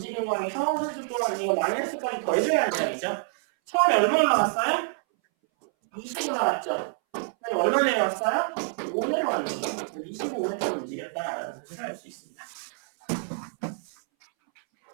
거에서 3초 동안 이거 마이너스까지 더해줘야 하는 이야기죠. 처음에 얼마 올라갔어요? 20 올라갔죠? 그리고 얼마 내려왔어요? 5 내려왔네요. 그래서 25m 움직였다라는 사실을 알 수 있습니다.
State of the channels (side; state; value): left; silent; 60 dB below the other